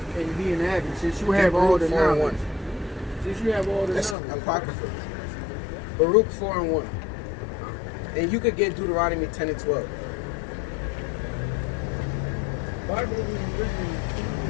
be an advocate, since you have all the knowledge? Since you have all the knowledge. Apocrypha. Baruch 4:1. And you could get Deuteronomy 10 and 12. Bible is written.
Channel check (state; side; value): drops out; right; at 4.2 s